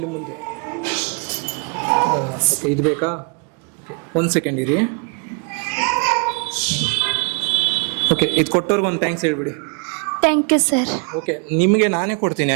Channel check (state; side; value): quieter; left; 35.8 dB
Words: ಮುಂದೆ. ಓಕೆ, ಇದು ಬೇಕಾ? ಓಕೆ, 1 ಸೆಕೆಂಡ್ ಇರಿ. ಓಕೆ, ಇದು ಕೊಟ್ಟವ್ರಿಗೆ ಒಂದು ಥ್ಯಾಂಕ್ಸ್ ಹೇಳ್ಬಿಡಿ. Thank you sir. ಓಕೆ, ನಿಮಗೆ ನಾನೇ ಕೊಡ್ತೀನಿ,